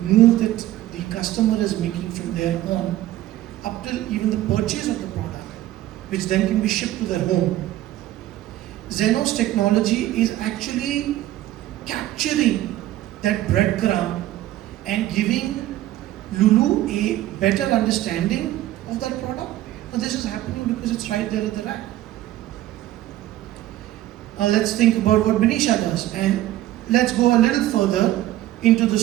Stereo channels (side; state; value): left; quieter; 14.6 dB